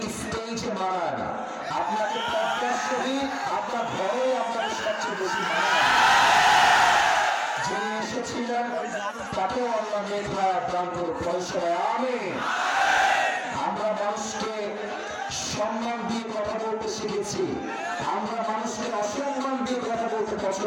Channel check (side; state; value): both; identical; correlation 1.00